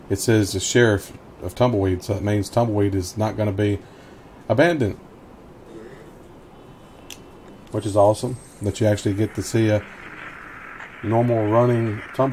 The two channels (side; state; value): both; identical; correlation 1.00